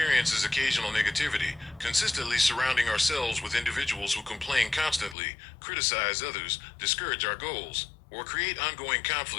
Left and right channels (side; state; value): right; drops out; at 5.2 s